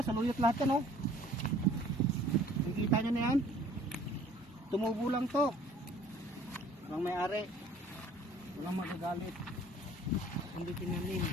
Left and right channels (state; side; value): normal; both; correlation 0.53